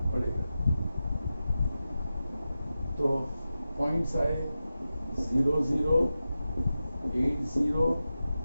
पड़ेगा? तो पॉइंट्स आए 0, 0, 8, 0,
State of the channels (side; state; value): both; inverted; correlation -0.92